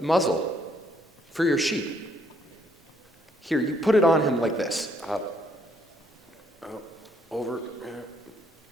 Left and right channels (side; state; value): both; normal; correlation 0.69